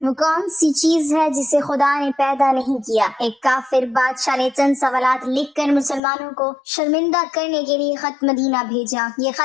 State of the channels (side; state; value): right; drops out; at 6.0 s